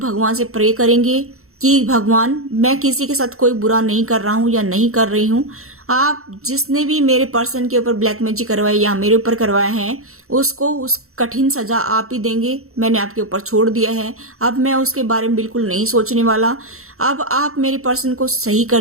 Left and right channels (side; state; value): left; late; 0.63 ms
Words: से प्रे करेंगे कि भगवान मैं किसी के साथ कोई बुरा नहीं कर रहा हूं या नहीं कर रही हूं, आप जिसने भी मेरे पर्सन के ऊपर ब्लैक मैजिक करवाया या मेरे ऊपर करवाया है उसको उस कठिन सजा आप ही देंगे। मैंने आपके ऊपर छोड़ दिया है, अब मैं उसके बारे में बिल्कुल नहीं सोचने वाला। अब आप मेरे पर्सन को सही